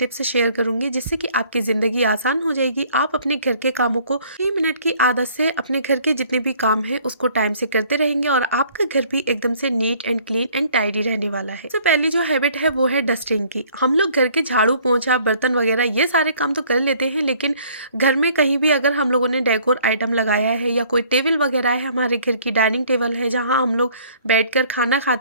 शेयर करूंगी जिससे कि आपकी ज़िंदगी आसान हो जाएगी। आप अपने घर के कामों को 3 मिनट की आदत से अपने घर के जितने भी काम हैं उसको टाइम से करते रहेंगे और आपका घर भी एकदम से neat and clean and tidy रहने वाला है। तो पहली जो हैबिट है वो है डस्टिंग की। हम लोग घर के झाड़ू पोंछा बर्तन वगैरह ये सारे काम तो कर लेते हैं, लेकिन घर में कहीं भी अगर हम लोगों ने डेकोर आइटम लगाया है या कोई टेबल वगैरह है, हमारे घर की डाइनिंग टेबल है जहाँ हम लोग बैठकर खाना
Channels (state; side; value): inverted; both; correlation -0.57